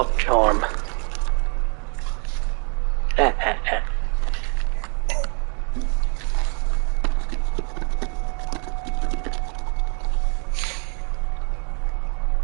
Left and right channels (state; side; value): quieter; left; 36.9 dB